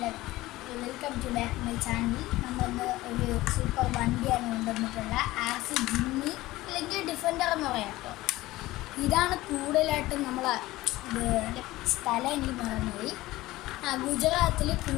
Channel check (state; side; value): quieter; right; 17.9 dB